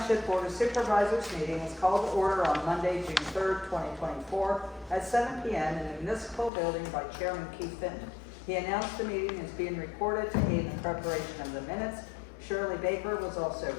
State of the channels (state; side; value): drops out; right; at 6.5 s